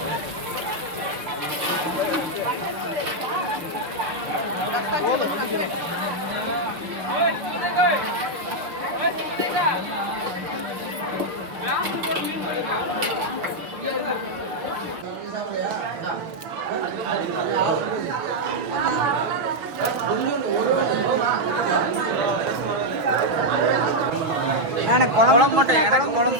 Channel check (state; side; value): late; left; 6.2 ms